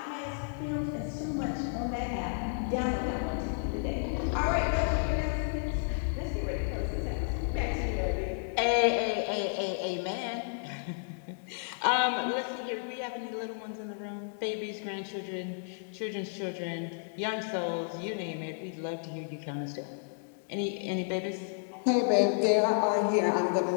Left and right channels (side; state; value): right; silent; 56 dB below the other